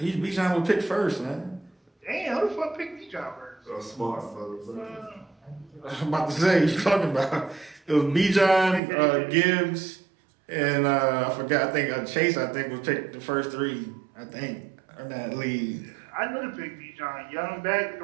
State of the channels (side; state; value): left; drops out; at 8.8 s